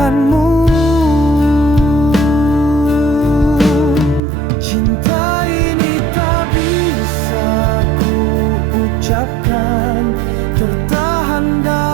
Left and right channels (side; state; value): left; drops out; at 4.2 s